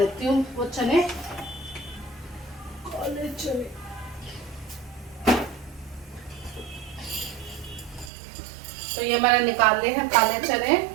हूँ वो चने, काले चने। तो ये मैंने निकाल लिए हैं काले चने।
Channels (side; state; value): left; drops out; at 8.1 s